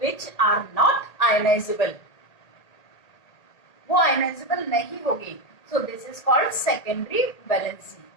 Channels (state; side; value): late; right; 1.8 ms